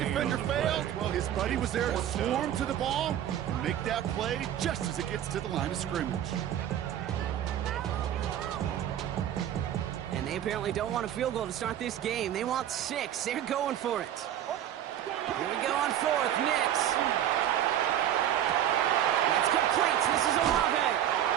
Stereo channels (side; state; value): left; quieter; 11.0 dB